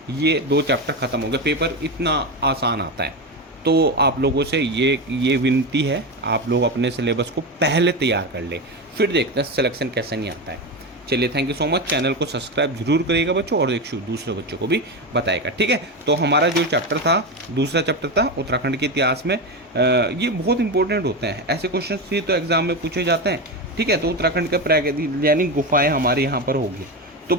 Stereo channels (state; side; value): normal; both; correlation 0.16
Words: ये 2 चैप्टर खत्म हो गए, पेपर इतना आसान आता है। तो आप लोगों से ये विनती है, आप लोग अपने सिलेबस को पहले तैयार कर ले, फिर देखते हैं सिलेक्शन कैसे नहीं आता है। चलिए, thank you so much. Channel को सब्सक्राइब जरूर करिएगा बच्चों, और एक दूसरे बच्चों को भी बताएगा, ठीक है। तो हमारा जो चैप्टर था, दूसरा चैप्टर था उत्तराखंड के इतिहास में। ये बहुत इंपॉर्टेंट होते हैं, ऐसे क्वेश्चन ही तो एग्जाम में पूछे जाते हैं, ठीक है, तो उत्तराखंड का यानी गुफाएं हमारे यहाँ पर होगी। तो